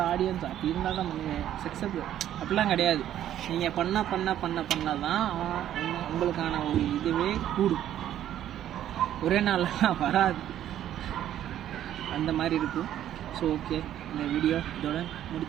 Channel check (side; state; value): left; quieter; 11.5 dB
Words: ஆடியன்ஸ் அப்படி இருந்தால் தான் பண்ணுவேன், சக்ஸஸ் அப்படிலாம் கிடையாது. நீங்கள் பண்ண தான் உங்களுக்கான ஒரு இதுவே கூடும். ஒரே நாள்லாம் வராது, அந்த மாதிரி இருக்கும். ஸோ ஓகே, இந்த வீடியோ இதோட